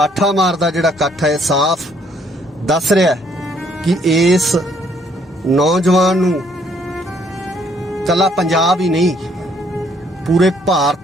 ਮਾਰਦਾ ਜਿਹੜਾ ਇਕੱਠ ਹੈ, ਸਾਫ਼ ਦੱਸ ਰਿਹਾ ਕਿ ਇਸ ਨੌਜਵਾਨ ਨੂੰ ਕੱਲਾ ਪੰਜਾਬ ਹੀ ਨਹੀਂ, ਪੂਰੇ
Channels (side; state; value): both; normal; correlation 0.66